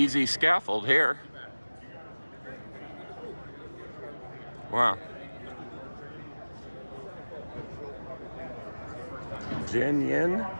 Scaffold here. Wow. Jin Yin,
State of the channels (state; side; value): inverted; both; correlation -1.00